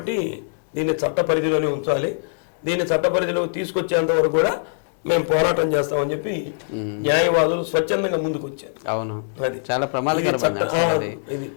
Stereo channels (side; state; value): right; silent; digital silence